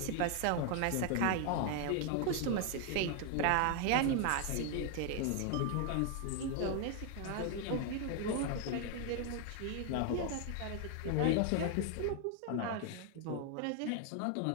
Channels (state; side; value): different; both; correlation 0.01